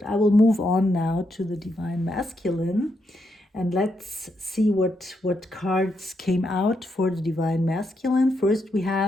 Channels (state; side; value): normal; both; correlation 0.80